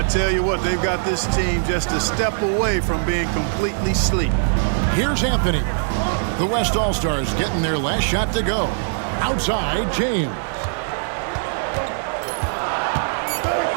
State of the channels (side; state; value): left; silent; digital silence